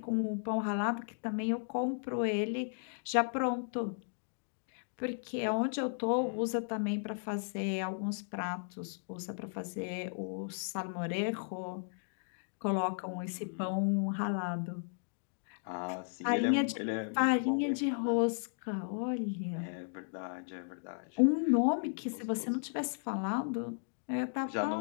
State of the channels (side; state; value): right; silent; digital silence